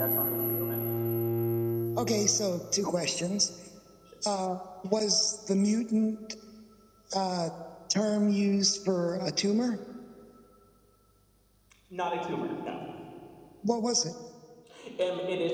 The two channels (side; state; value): both; identical; correlation 1.00